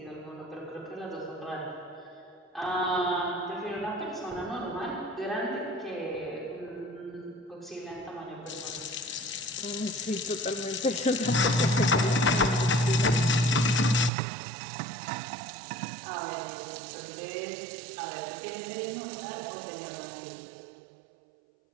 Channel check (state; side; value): drops out; left; at 14.1 s